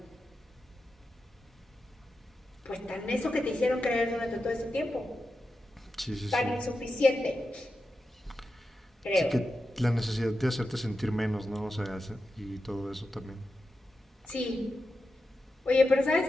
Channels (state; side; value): normal; both; correlation 0.90